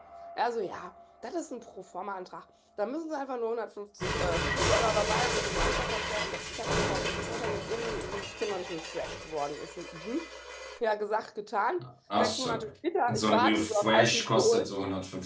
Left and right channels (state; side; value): identical; both; correlation 1.00